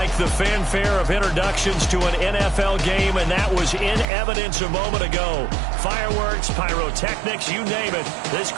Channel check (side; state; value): left; drops out; at 4.0 s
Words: the fanfare of introductions to an NFL game, and that was in evidence a moment ago. Fireworks, pyrotechnics, you name it. This